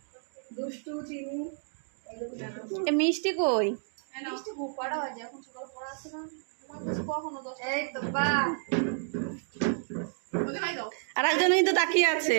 দুষ্টু চিনি এ মিষ্টি কই? মিষ্টি খুব কড়া বাজে, এখন সকালে পড়া আছে না, তোমার কাছে কখনো 10 এই তো বা ওদের নাই দাও। আর একজন কিন্তু তাকিয়ে আছে।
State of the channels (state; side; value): silent; left; digital silence